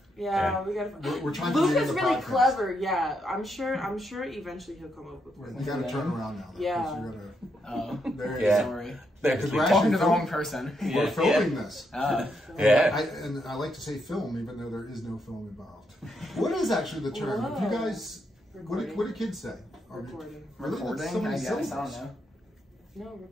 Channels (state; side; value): normal; both; correlation 0.79